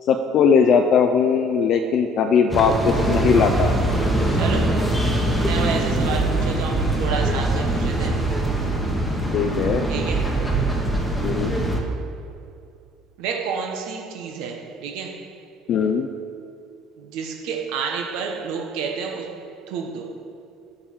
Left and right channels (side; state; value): both; normal; correlation 0.57